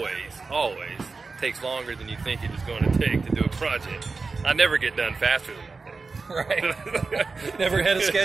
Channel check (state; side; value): quieter; left; 4.2 dB